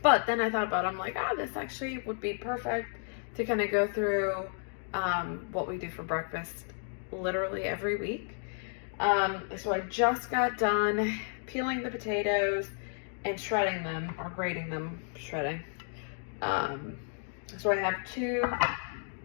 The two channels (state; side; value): silent; right; 56 dB below the other